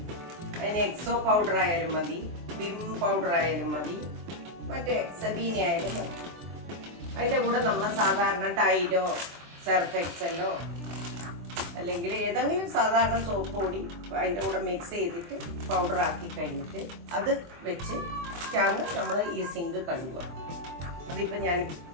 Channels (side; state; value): left; late; 24 ms